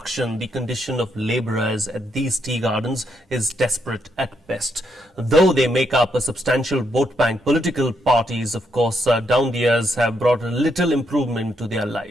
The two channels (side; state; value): both; normal; correlation 0.77